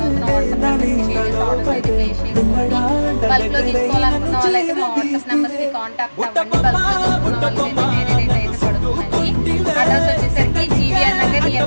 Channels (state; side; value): inverted; both; correlation -1.00